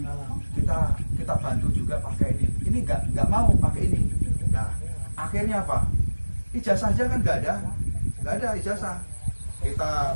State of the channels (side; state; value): both; inverted; correlation -1.00